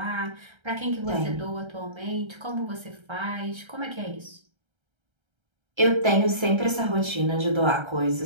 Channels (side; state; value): left; late; 1.3 ms